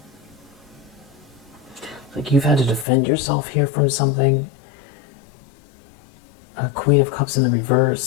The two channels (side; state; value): right; drops out; at 2.9 s